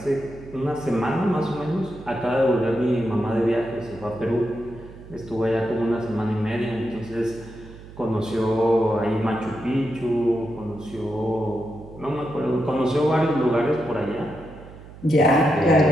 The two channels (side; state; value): right; noise; hum, 17 dB below the sound